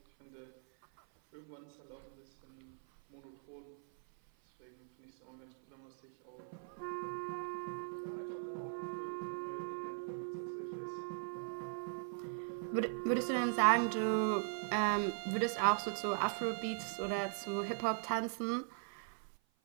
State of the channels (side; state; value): left; silent; 51 dB below the other